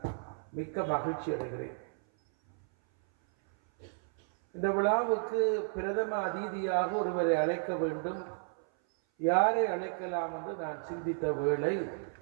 மிக்க மகிழ்ச்சி அடைகிறேன். இந்த விழாவுக்கு பிரதம அதிதியாக ஒருவரை அழைக்க வேண்டும். யாரை அழைக்கலாம் என்று நான் சிந்தித்த வேளை,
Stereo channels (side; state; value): left; silent; 56 dB below the other